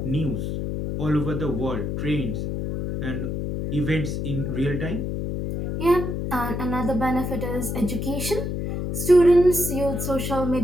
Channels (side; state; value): left; noise; hum, 3 dB below the sound